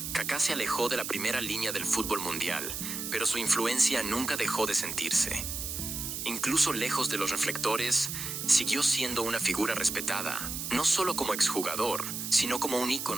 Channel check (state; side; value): noise; right; hiss, 5 dB below the sound